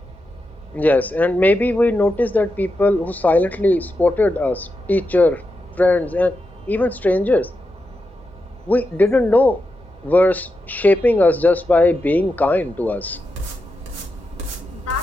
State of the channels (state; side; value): normal; both; correlation 0.88